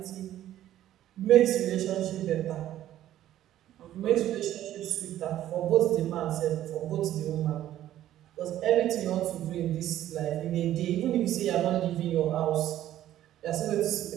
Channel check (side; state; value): left; quieter; 12.7 dB